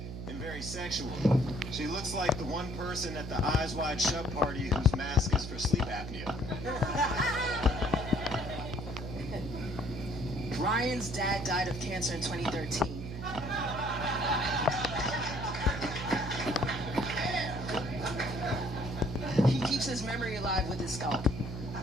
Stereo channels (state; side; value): noise; right; hum, 8 dB below the sound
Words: and very sexual. She looks like the one person at the Eyes Wide Shut party whose mask is for sleep apnea. Ryan's dad died of cancer in 2013. He keeps his memory alive with his scalp.